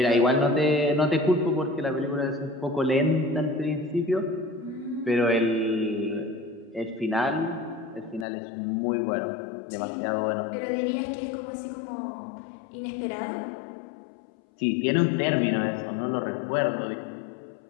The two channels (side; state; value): right; drops out; at 8.2 s